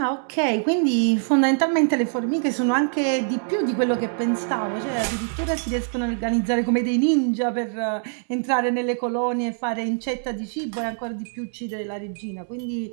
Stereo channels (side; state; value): left; silent; 63 dB below the other